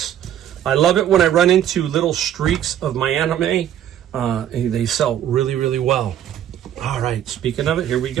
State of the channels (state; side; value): quieter; left; 10.7 dB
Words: I love it when I run into little streaks of my anime. They sell really, really well. All right, speaking of it, here we